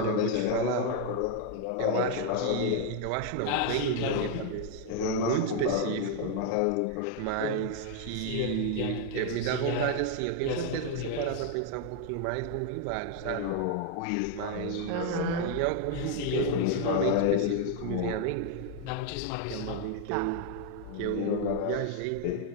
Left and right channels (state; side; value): different; both; correlation 0.00